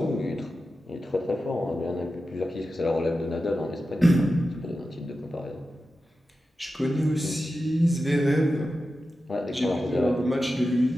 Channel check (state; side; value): normal; both; correlation 0.92